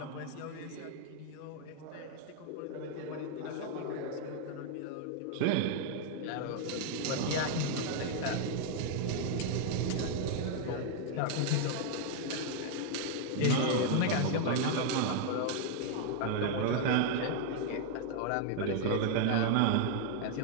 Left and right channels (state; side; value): different; both; correlation 0.00